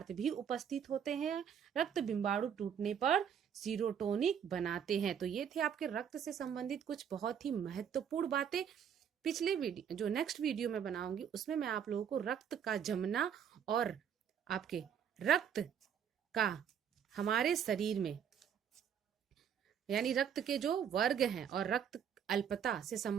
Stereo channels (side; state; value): left; quieter; 8.2 dB